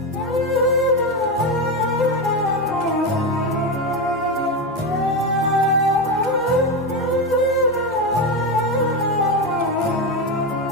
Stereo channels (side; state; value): both; normal; correlation 0.14